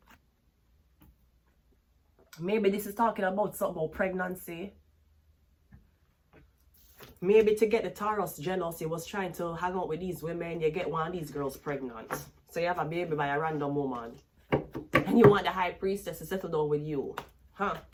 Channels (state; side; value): identical; both; correlation 1.00